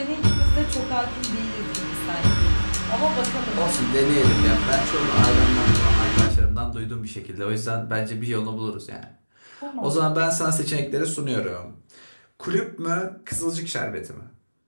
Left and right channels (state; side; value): inverted; both; correlation -1.00